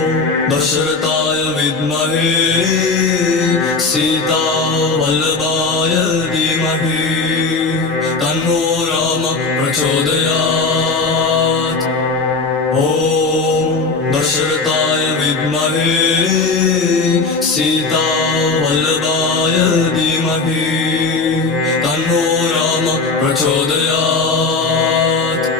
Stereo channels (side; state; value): right; quieter; 4.0 dB